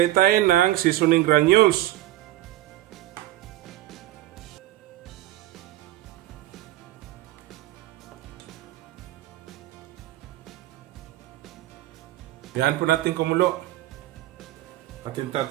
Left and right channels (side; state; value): left; quieter; 15.4 dB